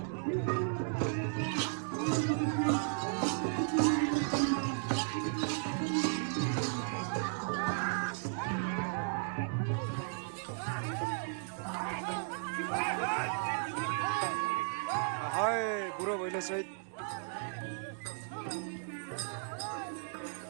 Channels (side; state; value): left; silent; digital silence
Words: बुढो भैले सहित